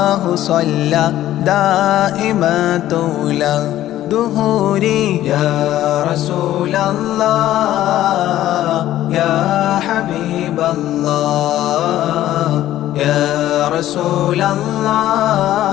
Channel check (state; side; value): quieter; right; 13.5 dB